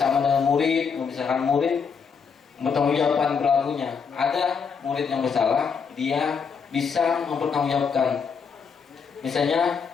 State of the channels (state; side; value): quieter; right; 6.0 dB